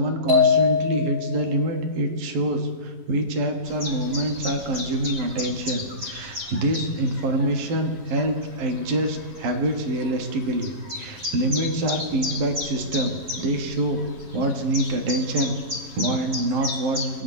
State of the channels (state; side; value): late; left; 11 ms